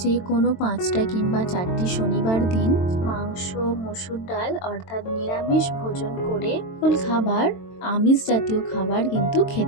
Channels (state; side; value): late; right; 22 ms